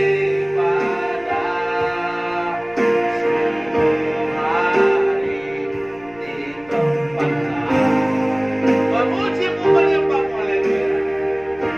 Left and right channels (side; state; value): left; noise; rumble, 27 dB below the sound